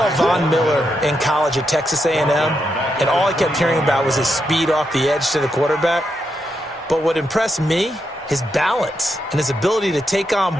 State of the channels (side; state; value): both; normal; correlation 0.83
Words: Von Miller in college at Texas A&M, and all I kept hearing about was his speed off the edge to the quarterback. But what impressed me, his balance and his ability to take on